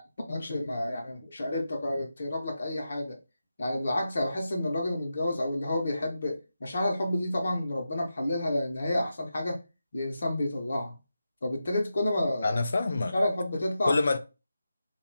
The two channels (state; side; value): inverted; both; correlation -0.90